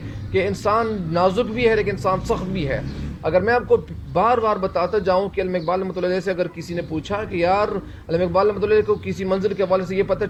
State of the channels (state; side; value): identical; both; correlation 1.00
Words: کہ انسان نازک بھی ہے لیکن انسان سخت بھی ہے۔ اگر میں آپ کو بار بار بتاتا جاؤں کہ علامہ اقبال رحمۃ اللہ علیہ سے اگر کسی نے پوچھا کہ یار علامہ اقبال رحمۃ اللہ علیہ کو کسی منزل کے حوالے سے یہ پتہ